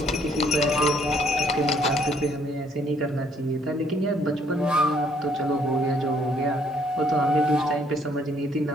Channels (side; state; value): both; normal; correlation 0.66